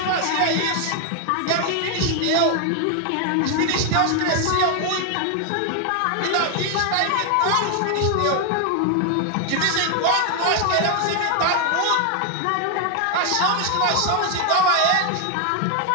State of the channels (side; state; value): both; different; correlation 0.01